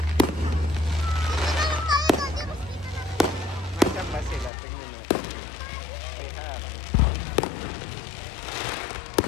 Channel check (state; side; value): drops out; right; at 4.5 s